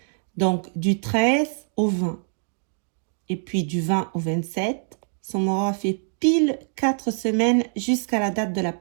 Donc, du 13 au 20. Et puis, du 20 au 27. Ça m'aura fait pile 4 semaines jusqu'à la date de la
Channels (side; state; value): left; silent; 58 dB below the other